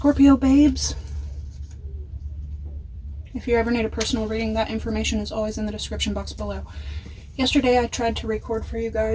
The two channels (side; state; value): both; identical; correlation 1.00